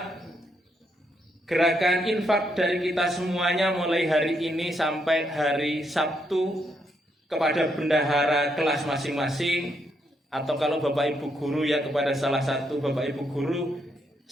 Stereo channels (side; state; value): both; normal; correlation 0.77